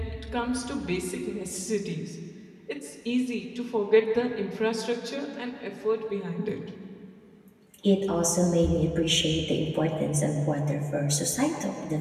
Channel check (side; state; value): both; identical; correlation 1.00